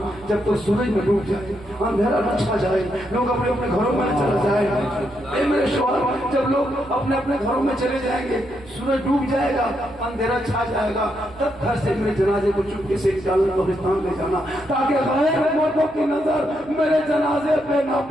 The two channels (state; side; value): noise; right; hum, 24 dB below the sound